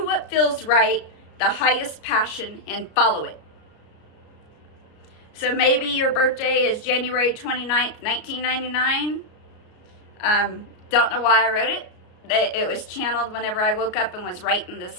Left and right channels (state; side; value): late; right; 33 ms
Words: what feels right, the highest passion, and follow it. So maybe your birthday is January 29th, 1999. Don't know why I wrote it. it was channeled whenever I woke up and was writing this